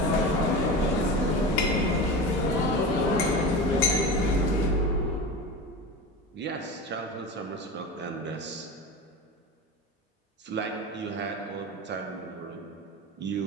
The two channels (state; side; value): normal; both; correlation 0.28